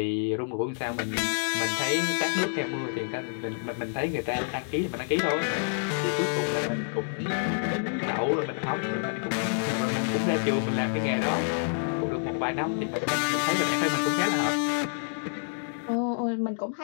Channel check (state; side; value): silent; right; digital silence